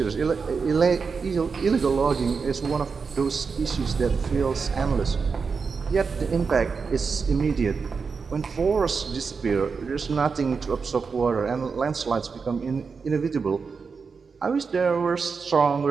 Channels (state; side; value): quieter; left; 5.2 dB